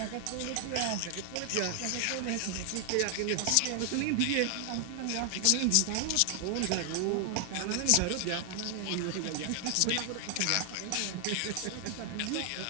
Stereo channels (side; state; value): both; different; correlation 0.00